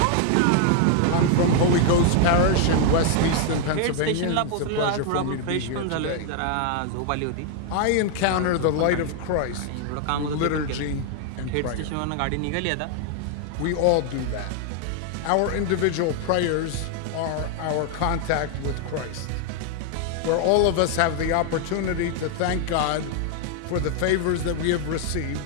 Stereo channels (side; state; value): both; different; correlation 0.00